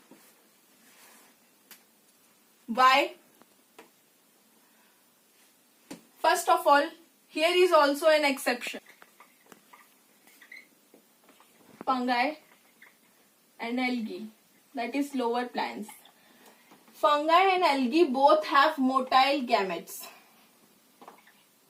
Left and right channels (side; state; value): both; identical; correlation 1.00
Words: Why? First of all, here is also an exception. fungi and algae, that is lower plants. Fungi and algae both have motile gametes.